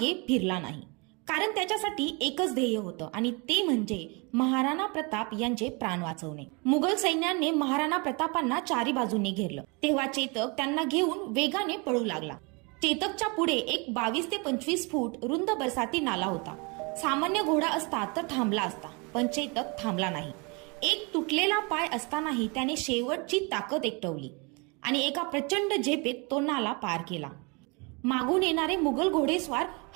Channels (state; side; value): quieter; left; 30.2 dB